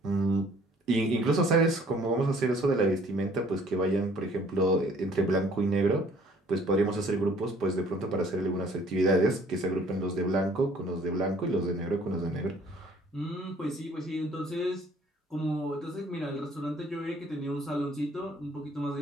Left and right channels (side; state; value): both; normal; correlation 0.57